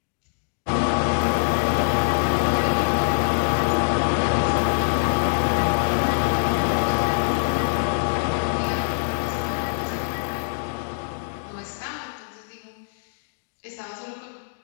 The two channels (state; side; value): silent; right; digital silence